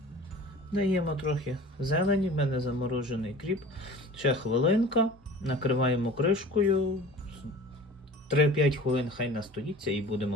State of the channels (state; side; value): normal; both; correlation 0.41